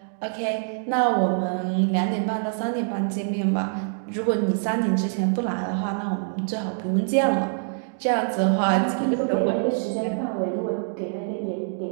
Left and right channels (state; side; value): silent; left; digital silence